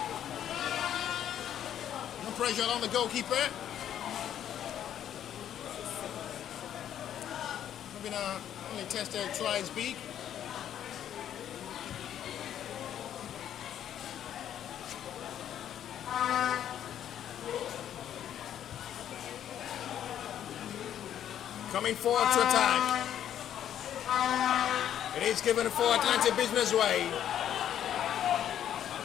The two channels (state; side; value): quieter; right; 10.3 dB